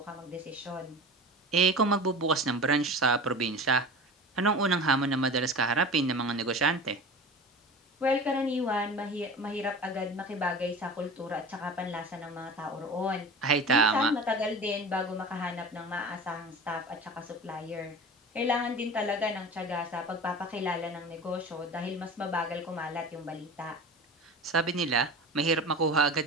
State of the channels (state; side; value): normal; both; correlation 0.34